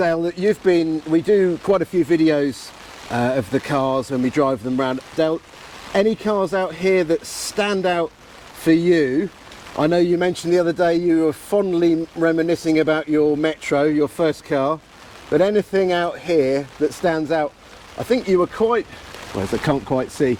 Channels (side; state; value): both; identical; correlation 1.00